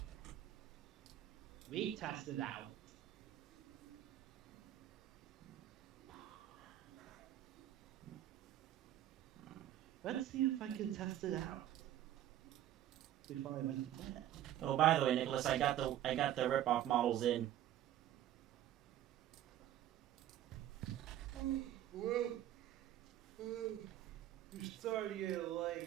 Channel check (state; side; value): quieter; left; 12.4 dB